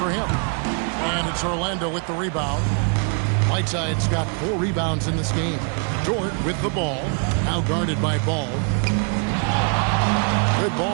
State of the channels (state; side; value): quieter; left; 39.8 dB